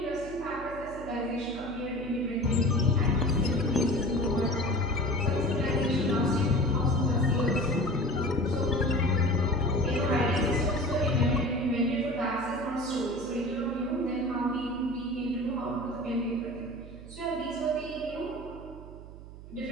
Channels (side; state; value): right; noise; hum, 15 dB below the sound